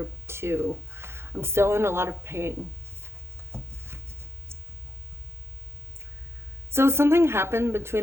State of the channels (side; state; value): left; late; 0.12 ms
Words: 2. I'm still in a lot of pain. So something happened